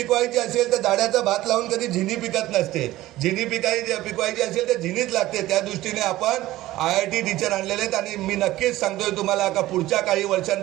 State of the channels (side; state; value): left; quieter; 16.2 dB